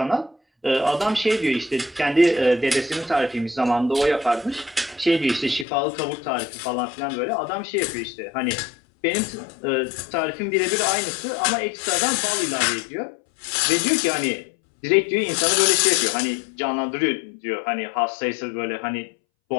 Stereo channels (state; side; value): drops out; right; at 5.7 s